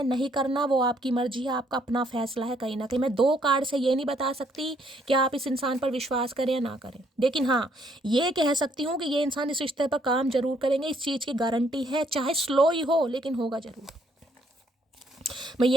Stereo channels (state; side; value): normal; both; correlation 0.69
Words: नहीं करना, वो आपकी मर्जी है, आपका अपना फैसला है। कहीं ना कहीं मैं 2 कार्ड से ये नहीं बता सकती कि आप इस इंसान पर विश्वास करें या ना करें, लेकिन हाँ ये कह सकती हूँ कि ये इंसान इस रिश्ते पर काम जरूर करेंगे, इस चीज़ की गारंटी है, चाहे स्लो ही हो लेकिन होगा जरूर। मैं